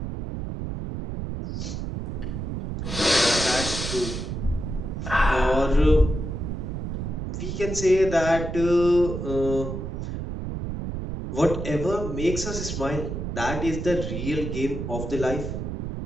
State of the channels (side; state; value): right; noise; rumble, 5 dB below the sound